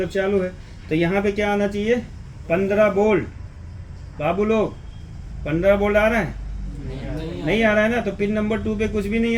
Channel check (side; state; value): both; identical; correlation 1.00